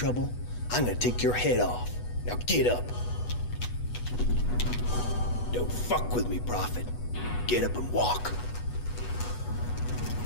I'm gonna take your head off. Now get up. Don't fuck with me, Prophet. Get up and walk.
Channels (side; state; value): right; late; 8.2 ms